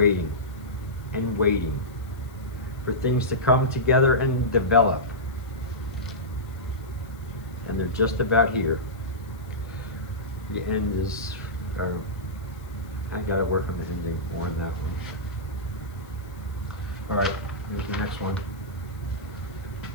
and waiting for things to come together and develop. And they're just about here. The end is, I gotta work on the ending more on that one. All right. Here's the next one.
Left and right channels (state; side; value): noise; left; hiss, 27 dB below the sound